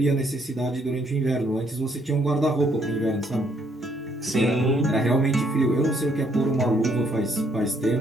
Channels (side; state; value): both; normal; correlation 0.70